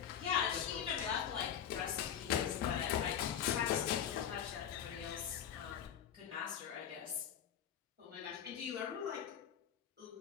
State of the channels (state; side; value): quieter; right; 9.0 dB